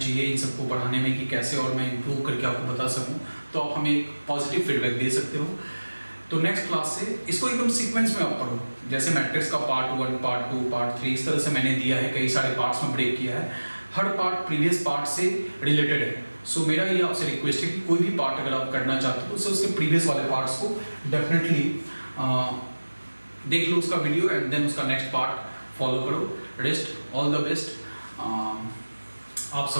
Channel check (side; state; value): both; inverted; correlation -1.00